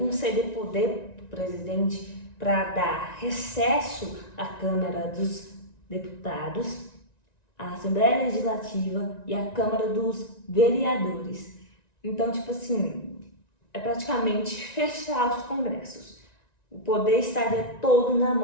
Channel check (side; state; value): right; late; 1.9 ms